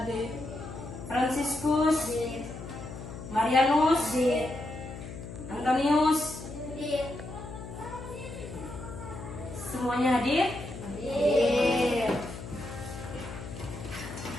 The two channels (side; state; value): left; noise; hum, 11 dB below the sound